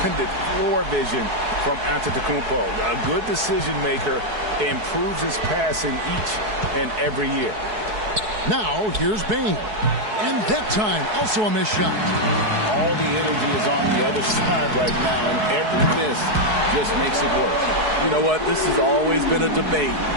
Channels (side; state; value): left; late; 4.7 ms